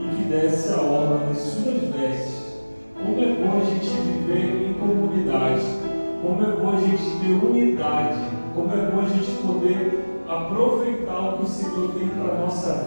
que desce a orla das suas vestes. Como é bom a gente viver em comunidade, como é bom a gente ter unidade, como é bom a gente poder aproveitar o que o Senhor tem para a nossa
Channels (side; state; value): both; inverted; correlation -1.00